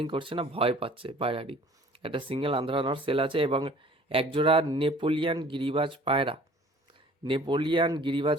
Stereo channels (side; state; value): both; normal; correlation 0.51